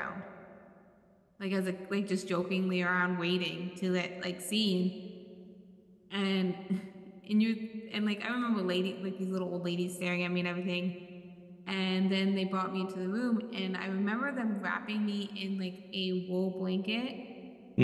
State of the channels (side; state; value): both; identical; correlation 1.00